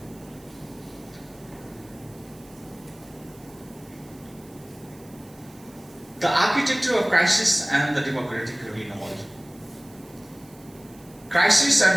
The architecture of crisis and the democratic renewal. Crisis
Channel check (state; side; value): noise; right; hiss, 25 dB below the sound